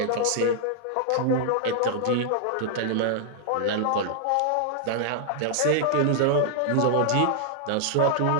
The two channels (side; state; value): both; different; correlation -0.01